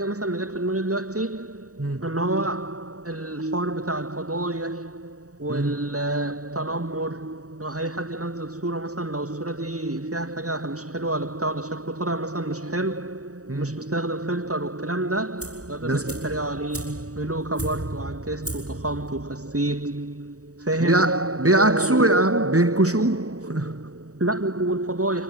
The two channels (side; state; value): left; late; 0.66 ms